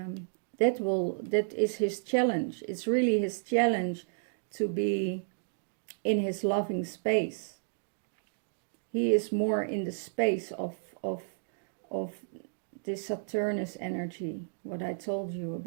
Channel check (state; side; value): silent; left; digital silence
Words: is his challenge. It's really his challenge to be in his loving space. He is more in the space of this Saturnus energy, what I told you